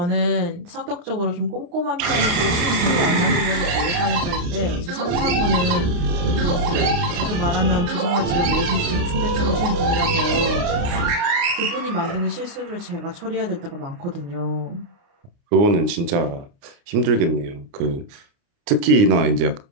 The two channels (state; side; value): late; left; 29 ms